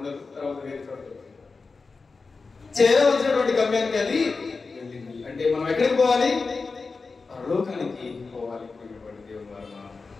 తర్వాత వేరే చోట చేరవలసినటువంటి గమ్యానికి అది వెళ్ళింది. అంటే మనం ఎక్కడికి పోవాలి? పరలోకానికి పోవాలి.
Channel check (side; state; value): right; quieter; 4.3 dB